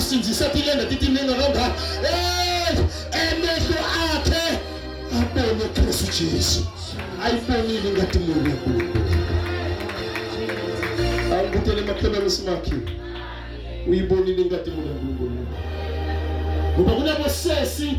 tilenda titiningi nakangaka emehlo akhe abone Kristu Jesu ayibonile inkathumulo yaNkulunkulu. Ngikutele makhelwane simakhi. Uyibonile ingadi uNkulunkulu. Ngoba kunabosesi,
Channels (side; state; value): both; identical; correlation 1.00